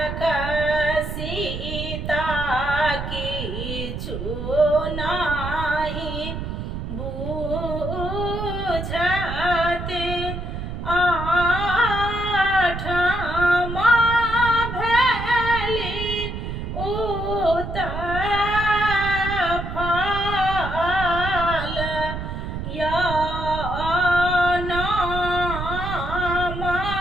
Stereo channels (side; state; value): right; noise; rumble, 6 dB below the sound